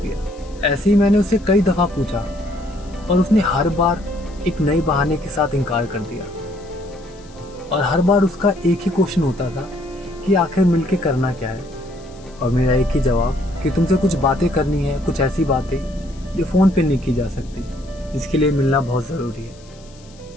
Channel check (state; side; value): noise; left; hiss, 26 dB below the sound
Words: ऐसे ही मैंने उससे कई दफ़ा पूछा, और उसने हर बार एक नए बहाने के साथ इनकार कर दिया। और हर बार उसका एक ही क्वेश्चन होता था कि आखिर मिलके करना क्या है, और मेरा एक ही जवाब कि तुमसे कुछ बातें करनी है, कुछ ऐसी बातें जो फ़ोन पे नहीं की जा सकती, जिसके लिए मिलना बहुत ज़रूरी है।